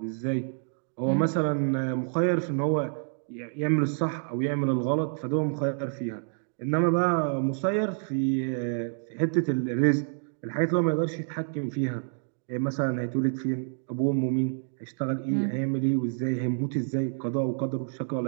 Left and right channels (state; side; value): silent; left; digital silence